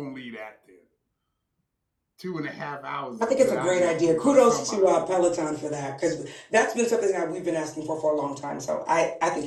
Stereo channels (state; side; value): identical; both; correlation 1.00